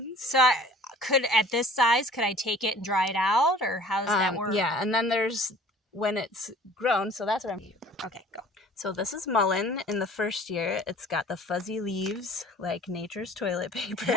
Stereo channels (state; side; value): normal; both; correlation 0.48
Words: So at this size, could I take it and dry it out, or how does that work? Yeah, and then there's when it's grown. So that's what I'm. Okay, go. So this is mullein. In the first year, it's got the fuzzy leaves like nature's toilet paper.